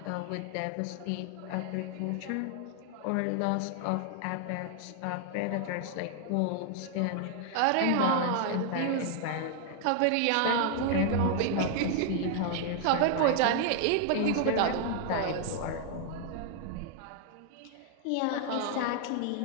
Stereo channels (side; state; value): both; different; correlation 0.00